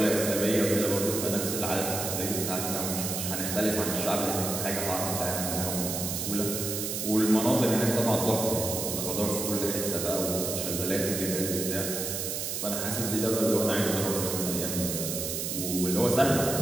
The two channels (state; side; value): noise; right; hiss, 3 dB below the sound